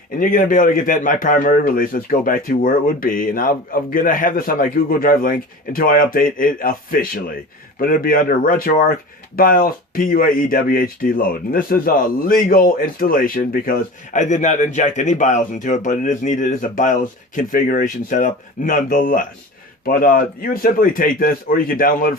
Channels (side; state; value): both; normal; correlation 0.35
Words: and you're going to be able to get that in my primary release. Let's go back to where it would be, and I'm going to have this on my Google Drive link until I update it officially. But it'll be under RetroArch, BIOS, P-UAE, WHD load. And this is a legal installation because I did not inject any BIOS into it, but it is needed as a BIOS configuration setup nonetheless. But you would simply take this, or you can download it